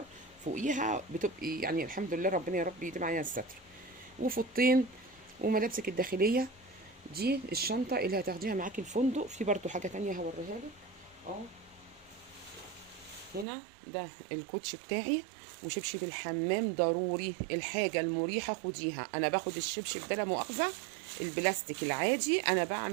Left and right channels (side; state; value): left; drops out; at 13.5 s